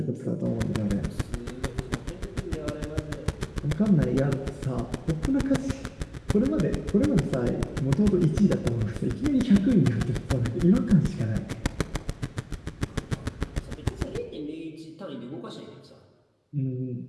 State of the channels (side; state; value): both; identical; correlation 1.00